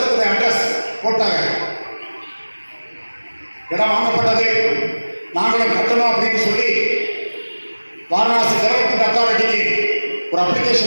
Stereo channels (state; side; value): inverted; both; correlation -1.00